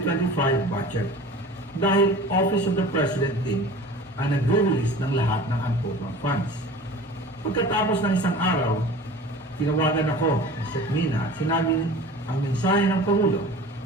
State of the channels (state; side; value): normal; both; correlation 0.40